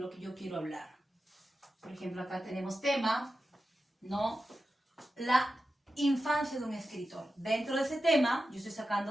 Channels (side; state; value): both; normal; correlation 0.92